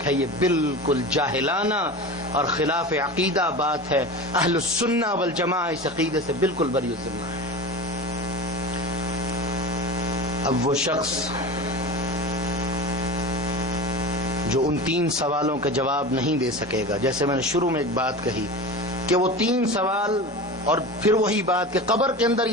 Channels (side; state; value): both; normal; correlation 0.30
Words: ہے، یہ بالکل جاہلانہ اور خلاف عقیدہ بات ہے۔ اہل السنہ والجماعہ اس عقیدے سے بالکل بری الذمہ ہے۔ اب وہ شخص جو ان 3 سوالوں کے جواب نہیں دے سکے گا. جیسے میں نے شروع میں ایک بات کہی کہ وہ 3 سوال اور پھر وہی بات کہ قبر کے اندر